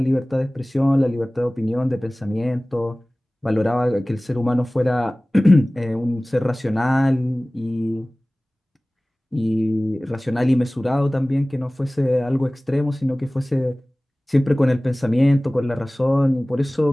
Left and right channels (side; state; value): both; normal; correlation 0.98